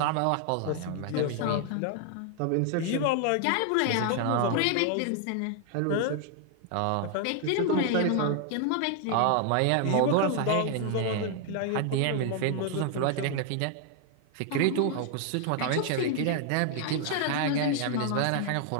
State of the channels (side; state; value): both; different; correlation 0.00